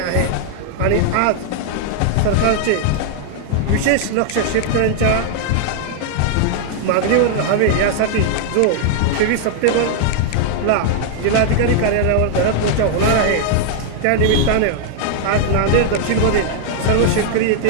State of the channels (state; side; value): different; both; correlation 0.00